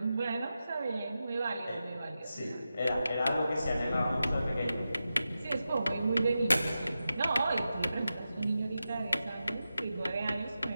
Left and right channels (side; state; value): both; inverted; correlation -0.91